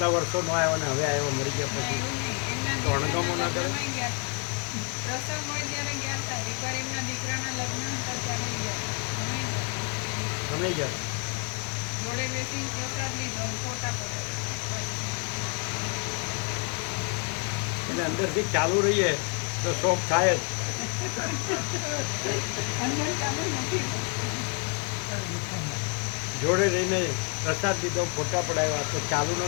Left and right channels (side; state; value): right; quieter; 35.9 dB